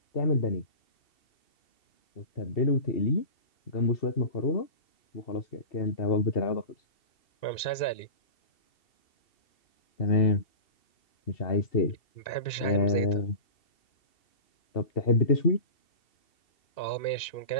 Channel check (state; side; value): late; right; 2.7 ms